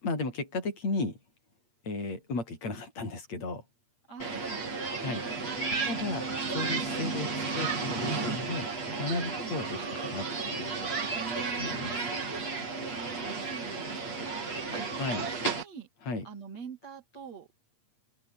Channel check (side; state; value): right; late; 8.5 ms